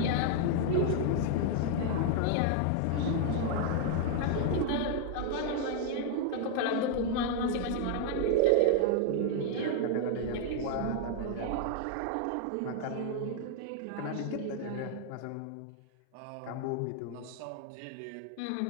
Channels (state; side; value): different; both; correlation 0.00